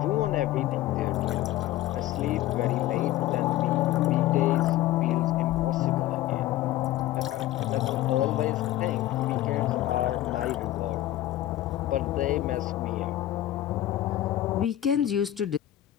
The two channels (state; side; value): quieter; right; 14.2 dB